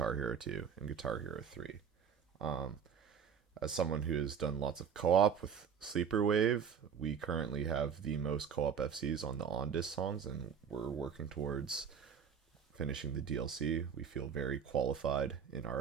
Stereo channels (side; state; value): left; quieter; 7.3 dB